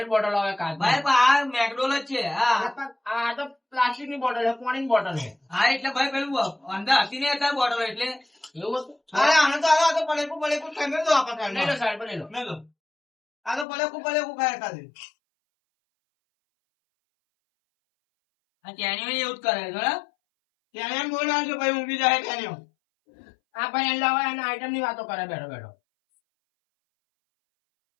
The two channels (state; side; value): drops out; right; at 13.7 s